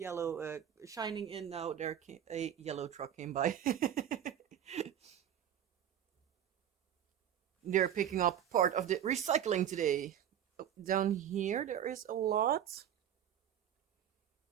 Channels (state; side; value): quieter; left; 10.1 dB